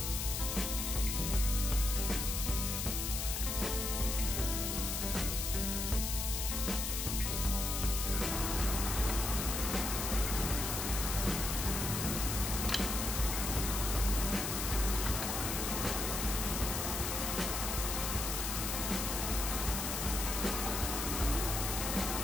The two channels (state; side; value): noise; left; hiss, 2 dB below the sound